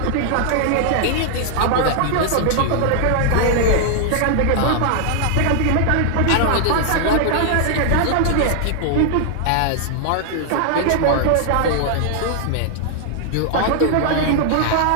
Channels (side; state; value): both; different; correlation 0.00